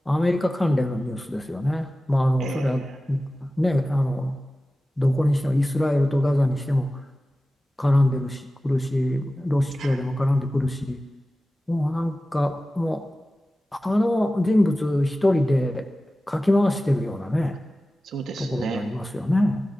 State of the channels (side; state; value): both; normal; correlation 0.96